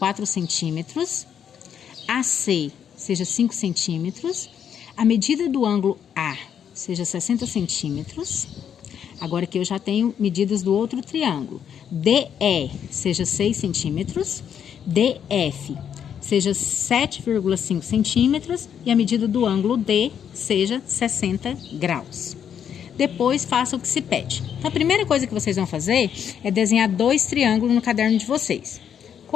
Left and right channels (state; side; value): quieter; right; 8.5 dB